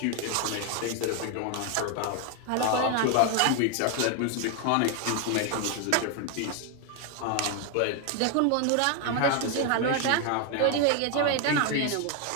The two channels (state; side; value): different; both; correlation 0.01